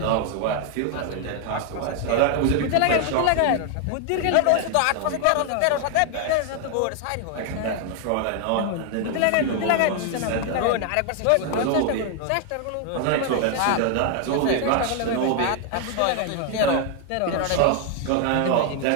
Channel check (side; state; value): both; different; correlation 0.00